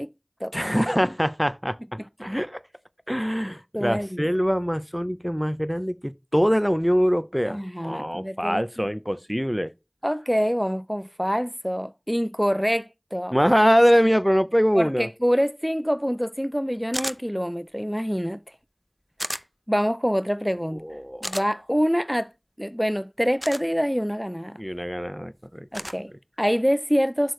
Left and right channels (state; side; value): identical; both; correlation 1.00